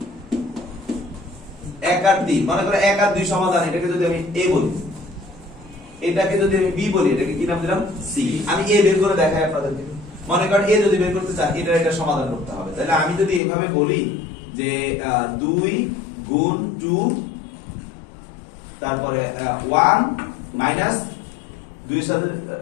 1 আর 3, মনে করো 1 আর 2 সমাধান, এটাকে যদি আমি a বলি, এটাকে যদি আমি b বলি, এটাকে কি নাম দিলাম? c। আমি a বের করে দেখাই আপনাদেরকে। মনে করেন a যদি বের করতে চান, এটা সমাধান করতে হবে। তাহলে আমি যদি এইভাবে বলি যে 2 গুণ 2, তারপরে 1 মাইনাস 2 এর সাথে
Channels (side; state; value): right; drops out; at 13.4 s